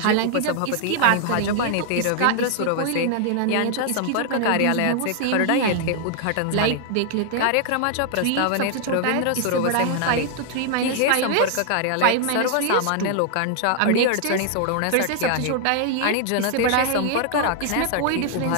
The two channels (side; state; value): both; different; correlation 0.00